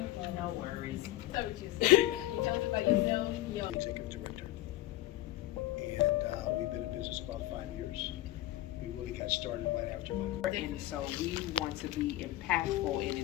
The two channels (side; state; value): right; quieter; 15.7 dB